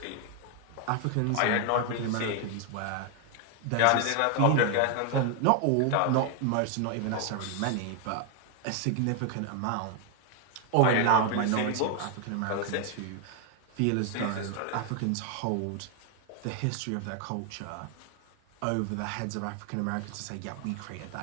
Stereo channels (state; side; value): different; both; correlation 0.01